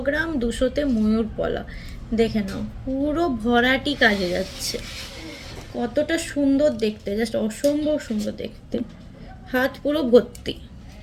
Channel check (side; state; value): both; identical; correlation 1.00